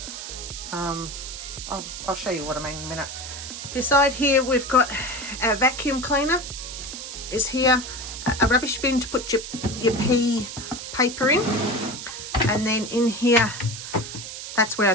I'll show you what I mean in a minute. Beside here we've got our vacuum cleaner is here, a rubbish bin to put your pea paper in, and then in here, that's where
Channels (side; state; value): right; noise; hiss, 9 dB below the sound